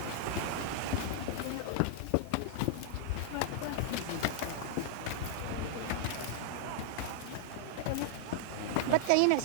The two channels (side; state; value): both; different; correlation -0.01